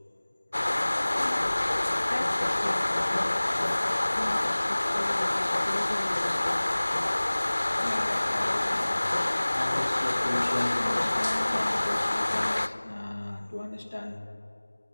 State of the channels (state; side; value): inverted; both; correlation -1.00